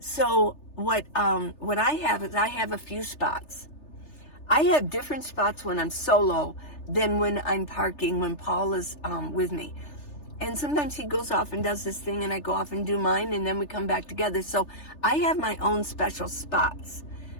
what I have is I have a few spots. I have different spots when I'm solo than when I'm parking, when Paul is with me. And sometimes he goes off and does this thing and I go off and do mine and then we come back together. So I have my own special spots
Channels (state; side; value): late; right; 3.3 ms